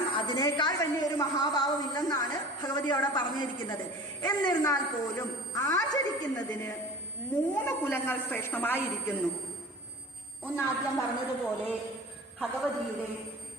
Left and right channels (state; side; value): normal; both; correlation 0.39